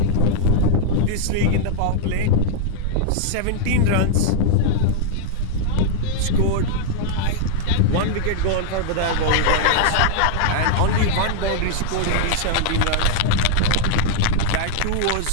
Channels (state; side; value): different; both; correlation -0.01